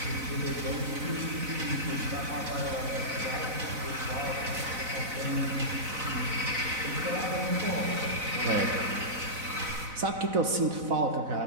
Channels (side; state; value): left; late; 4.0 ms